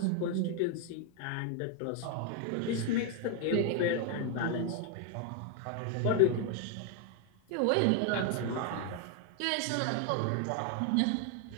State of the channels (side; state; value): both; different; correlation 0.00